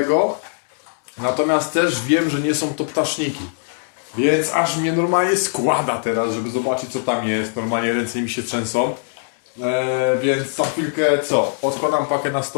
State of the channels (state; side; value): silent; right; digital silence